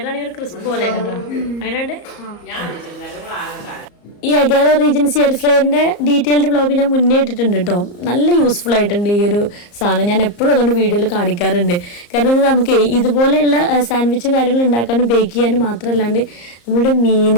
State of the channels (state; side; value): late; right; 34 ms